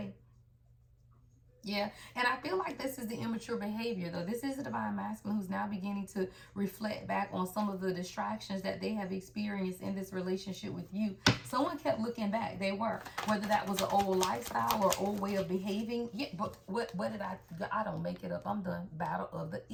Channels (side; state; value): both; identical; correlation 1.00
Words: Yeah, and I feel like this is the immature behavior, though. This is the divine masculine who's now beginning to reflect back on some of the distractions that they have experienced in this relationship with you. Someone kept looking back. They were, whether that was an old lifestyle or old way of behaving. Yeah, but what did I don't make it up. I'm done. Battle of the